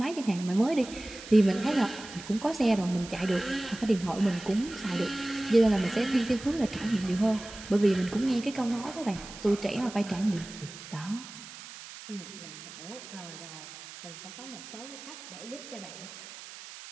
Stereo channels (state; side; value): noise; right; hiss, 14 dB below the sound